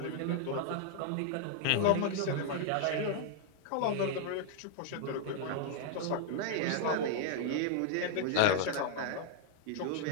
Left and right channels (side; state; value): both; different; correlation 0.00